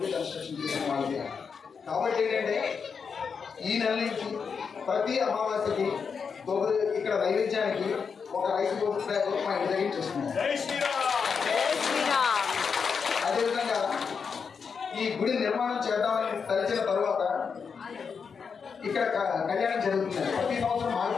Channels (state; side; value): quieter; right; 5.9 dB